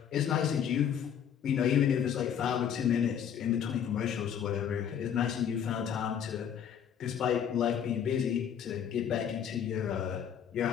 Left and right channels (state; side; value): quieter; right; 8.6 dB